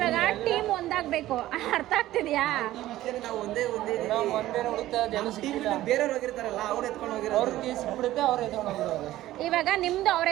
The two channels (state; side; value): quieter; left; 15.0 dB